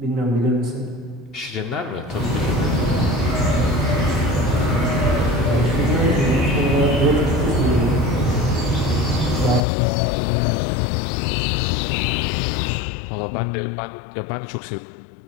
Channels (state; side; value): drops out; right; at 9.6 s